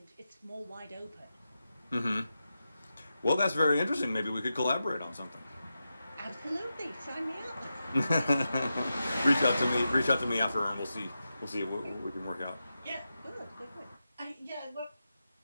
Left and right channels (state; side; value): inverted; both; correlation -0.90